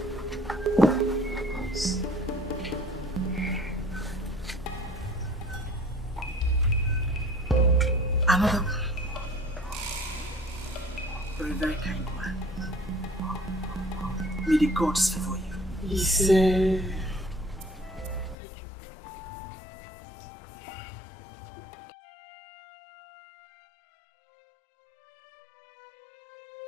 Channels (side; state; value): right; drops out; at 18.4 s